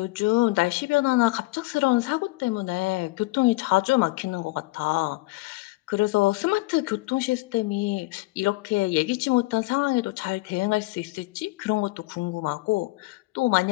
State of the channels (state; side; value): quieter; right; 21.7 dB